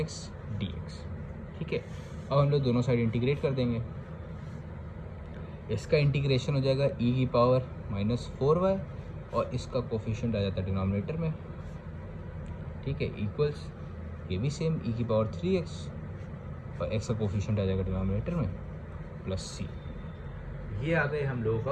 dx। ठीक है, अब हम लोग दोनों साइड इंटीग्रेट कर देंगे। इसका इंटीग्रेशन हो जाएगा e की पावर माइनस 4y और इसका कोफिशिएंट आ जाता है डिनोमिनेटर में। ठीक है, इक्वल्स ये भी सेम e की पावर 3x और x का कोफिशिएंट आ जाएगा डिनोमिनेटर में प्लस c। ये आ गए हम लोगों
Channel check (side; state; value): both; identical; correlation 1.00